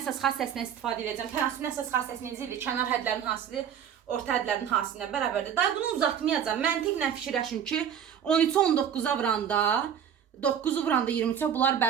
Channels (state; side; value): quieter; left; 8.6 dB